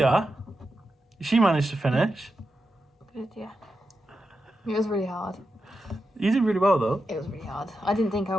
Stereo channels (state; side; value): normal; both; correlation 0.89